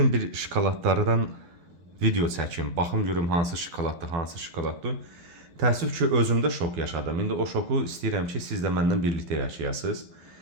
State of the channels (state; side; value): late; left; 12 ms